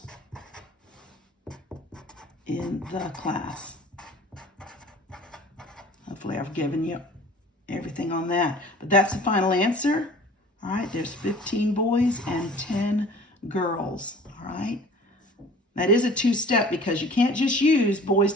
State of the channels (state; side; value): normal; both; correlation 0.46